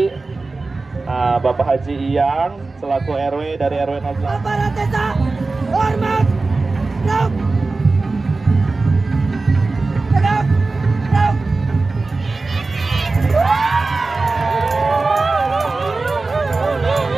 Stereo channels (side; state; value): left; quieter; 3.6 dB